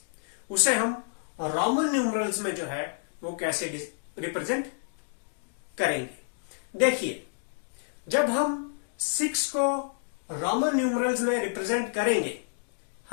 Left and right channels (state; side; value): silent; right; digital silence